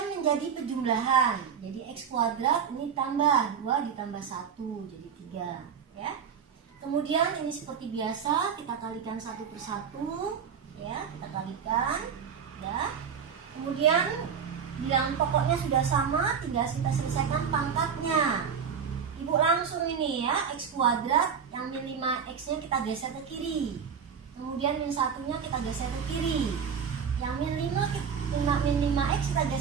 menjadi pejumlahan. Jadi X kuadrat ini tambah 2 ditambah 1 jadi 3, ya. Kemudian ini seperti biasa kita kalikan 1 per 1, ya, kita kalikan, ya. Kemudian bilangan pokoknya sudah sama, tinggal kita selesaikan pangkatnya. Ibu langsung ini, ya, X kuadrat yang min 5X nya kita geser ke kiri, kemudian min 1-nya kita geser ke kiri, yang min 5X kita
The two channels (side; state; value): left; quieter; 7.0 dB